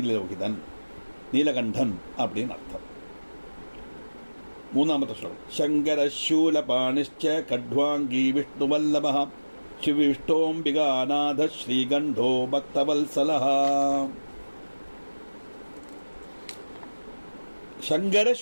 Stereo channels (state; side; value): inverted; both; correlation -1.00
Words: நீலகண்டன் அப்படின்னு அர்த்தம். மூணாமത്തെ ஸ்லோகம். சங்கர சூலபாணிச்ச கட்வாங்கி விஷ்ணுவல்லப சிவிஷ்டோம்பிகாநாத ஸ்ரீகண்டோ பக்தவல்சலஹ. சங்கர